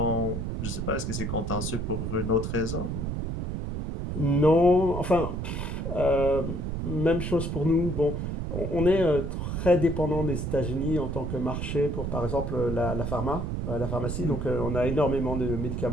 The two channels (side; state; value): right; noise; rumble, 3 dB below the sound